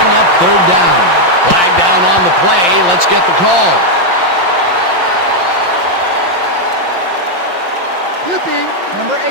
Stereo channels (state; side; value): late; left; 5.8 ms